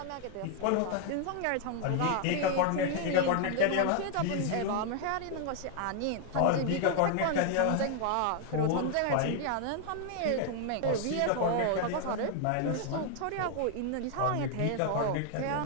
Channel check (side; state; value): both; different; correlation 0.00